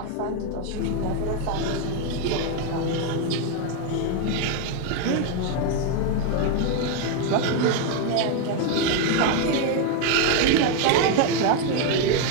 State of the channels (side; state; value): both; different; correlation 0.01